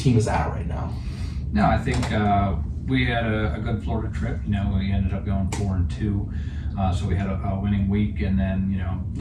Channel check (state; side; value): identical; both; correlation 1.00